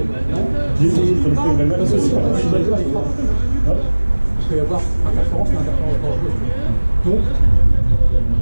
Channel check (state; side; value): inverted; both; correlation -1.00